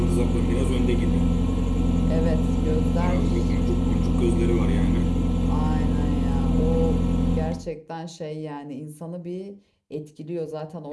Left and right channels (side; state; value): both; identical; correlation 1.00